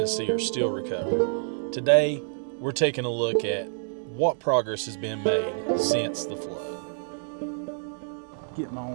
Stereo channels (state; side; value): silent; left; digital silence